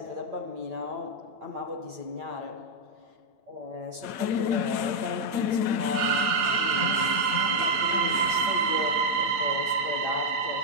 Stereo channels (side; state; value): left; late; 8.8 ms